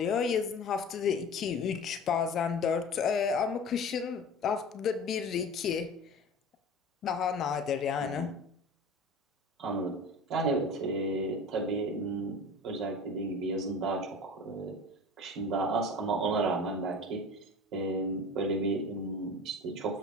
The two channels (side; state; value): both; normal; correlation 0.36